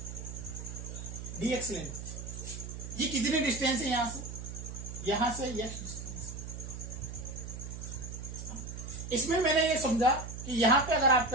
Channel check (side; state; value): right; noise; hum, 8 dB below the sound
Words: dx लेंथ। ये कितनी डिस्टेंस है यहां से x डिस्टेंस। इसमें मैंने ये समझा कि यहां पे अगर